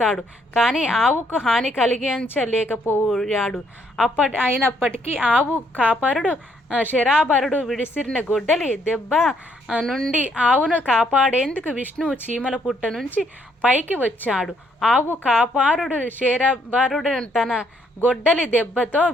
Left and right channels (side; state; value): both; normal; correlation 0.70